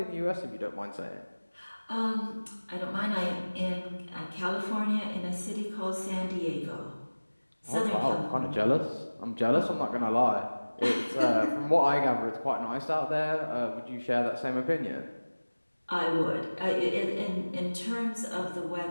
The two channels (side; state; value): both; inverted; correlation -1.00